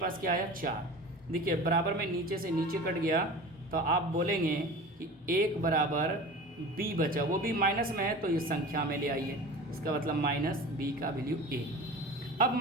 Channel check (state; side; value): normal; both; correlation 0.36